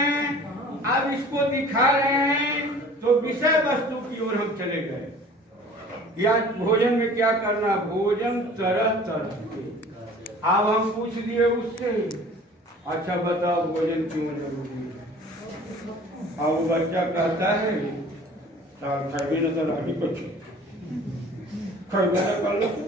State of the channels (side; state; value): both; normal; correlation 0.47